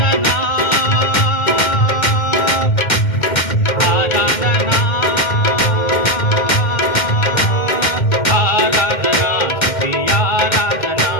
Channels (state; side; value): late; right; 2.1 ms